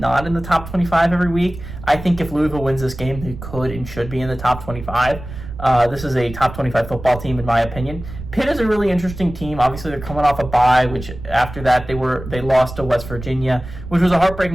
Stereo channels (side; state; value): right; noise; rumble, 12 dB below the sound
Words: in the top 25 every week. I think if Louisville wins this game, they could and should be in the top 25. This is a top 25 football team, in my opinion. Pitt is a really interesting team. Obviously, they're coming off a bye, which after that they lost to West Virginia, which was a